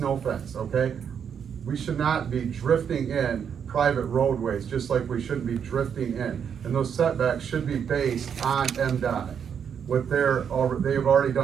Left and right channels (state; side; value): quieter; left; 7.7 dB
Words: fence, okay? We should not be drifting in private roadways, just like we shouldn't be drifting in. And those setbacks should be based on MDOT. They've already